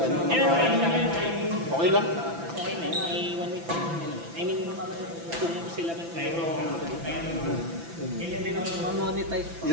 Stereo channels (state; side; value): late; left; 5.9 ms